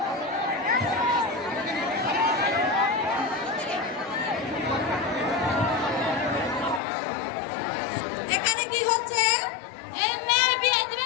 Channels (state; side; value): drops out; right; at 6.8 s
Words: এখানে কি হচ্ছে এই মেয়ের বিয়ে